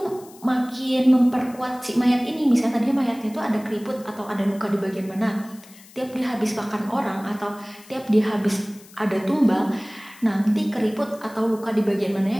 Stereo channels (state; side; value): noise; left; hiss, 23 dB below the sound